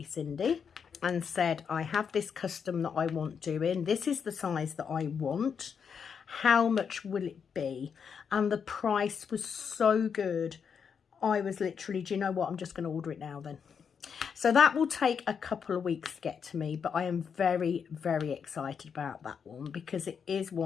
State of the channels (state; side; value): quieter; right; 6.8 dB